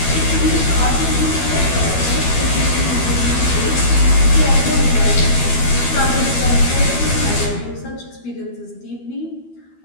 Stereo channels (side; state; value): right; late; 12 ms